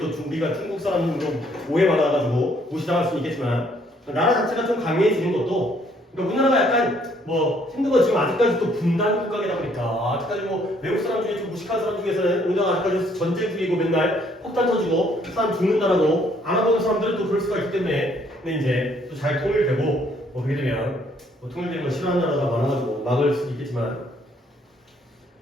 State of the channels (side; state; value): both; normal; correlation 0.65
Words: 우리가 중국 사람으로 오해받아가지고 무시당할 수는 있겠지만 나라 자체가 좀 강해지는 것도 그러니까 우리나라가 약간 뭐 힘든 건 지금 아직까지 또 분단 국가이다 보니까 아직까지 뭐 외국 사람 중에 좀 무식한 사람 중에서는 우리나라가 아직까지 전쟁 중이고 맨날 폭탄 터지고 사람 죽는다라고 알아보는 사람들은 또 그럴 수가 있기 때문에 근데 이제 또 잘 통일되고 뭐 그렇게 되면 뭐 통일되는 걸 싫어하는 나라가 많아가지고 막을 수도 있겠지만